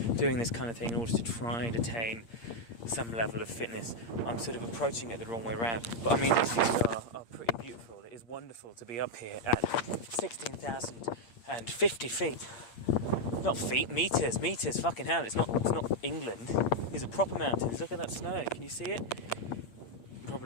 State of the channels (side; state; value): right; late; 8.6 ms